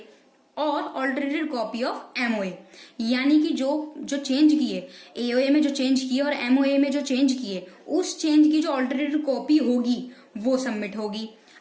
और ऑल्टरेटेड कॉपी ऑफ MOA, यानी कि जो चेंज किए, AOA में जो चेंज किए और MOA में जो चेंज किए, उस चेंज की जो ऑल्टरेटेड कॉपी होगी वो सबमिट होगी।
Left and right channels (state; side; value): identical; both; correlation 1.00